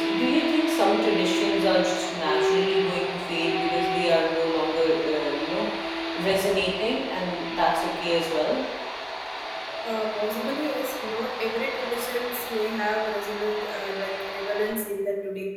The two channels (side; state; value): both; identical; correlation 1.00